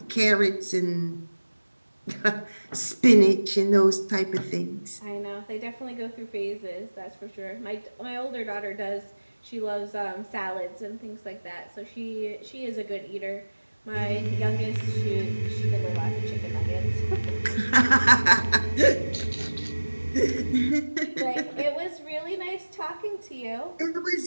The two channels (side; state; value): both; inverted; correlation -1.00